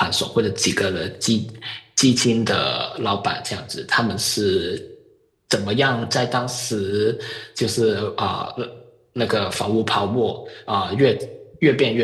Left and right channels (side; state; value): both; identical; correlation 1.00